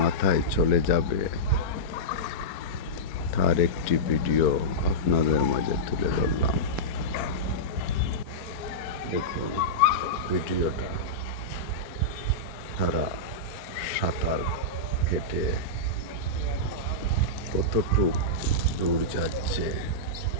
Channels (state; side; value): late; right; 4.3 ms